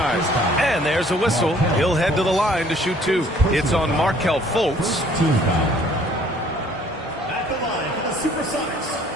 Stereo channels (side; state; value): both; normal; correlation 0.58